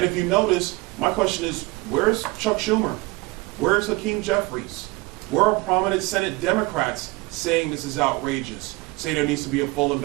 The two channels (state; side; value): quieter; left; 23.8 dB